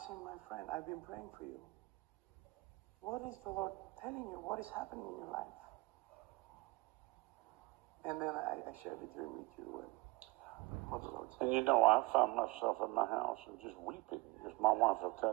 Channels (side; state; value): left; quieter; 23.4 dB